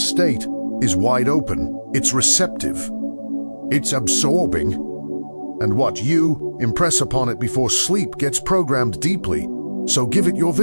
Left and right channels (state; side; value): inverted; both; correlation -1.00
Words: is wide open, it's receptive, it's absorbing, and what you impress upon it before sleep gets programmed deeply. So give it your